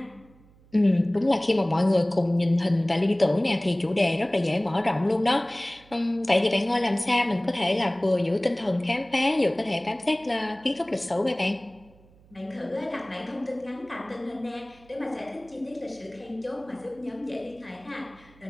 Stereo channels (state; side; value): noise; right; hum, 27 dB below the sound